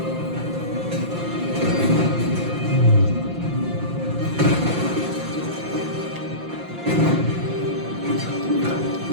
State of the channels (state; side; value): late; left; 5.8 ms